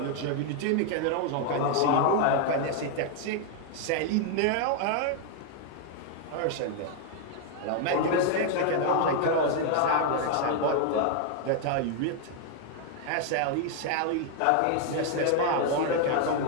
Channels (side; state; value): both; different; correlation 0.00